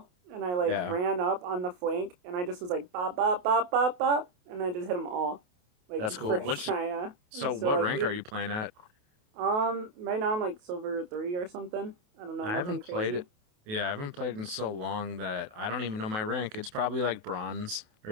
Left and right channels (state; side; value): late; left; 28 ms